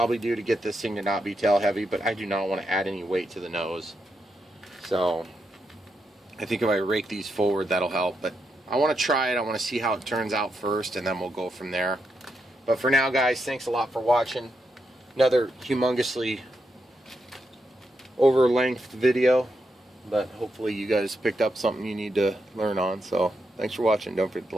do to get this thing to not be tail heavy, but I do not want to add any weight to the nose. So I think if I rake these forward, that'll help. But I want to try it. I want to see how it turns out first, and then we'll go from there. But for now, guys, thanks a lot for watching. Another humongously over-length video, but hopefully you guys picked up something you need to learn on. So thanks for watching. Don't forget to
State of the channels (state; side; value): normal; both; correlation 0.83